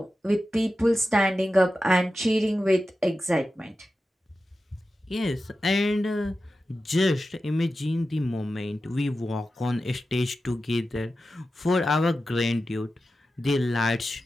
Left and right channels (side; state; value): both; normal; correlation 0.92